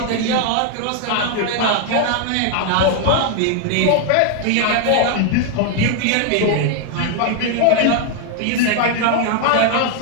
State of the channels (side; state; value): both; different; correlation 0.01